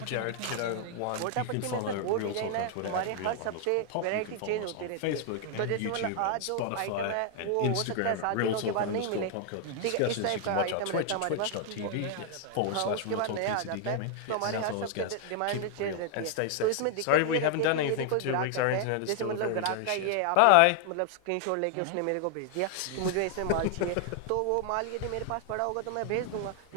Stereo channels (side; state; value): both; different; correlation 0.00